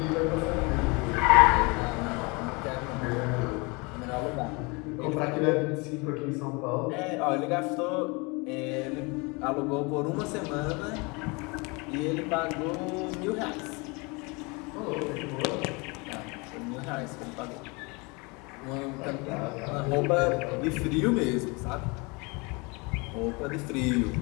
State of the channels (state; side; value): quieter; right; 28.4 dB